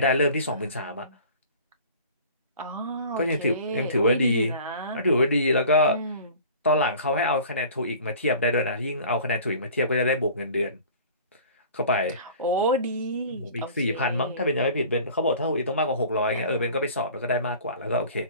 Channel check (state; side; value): inverted; both; correlation -0.45